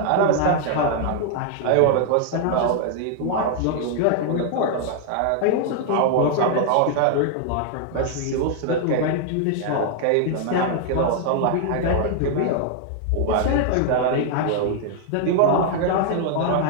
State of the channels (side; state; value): both; different; correlation 0.00